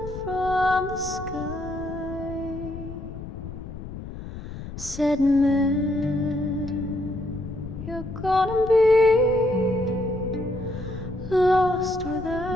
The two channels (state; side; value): noise; left; rumble, 10 dB below the sound